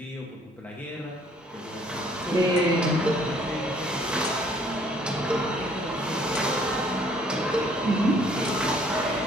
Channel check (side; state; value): both; normal; correlation 0.61